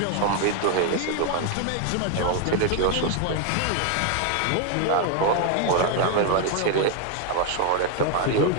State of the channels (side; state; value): both; different; correlation 0.01